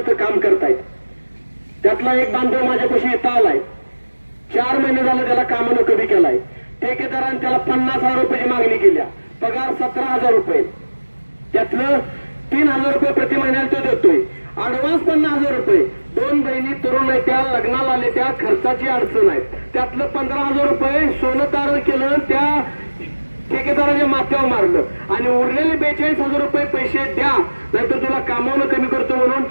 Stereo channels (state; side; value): inverted; both; correlation -1.00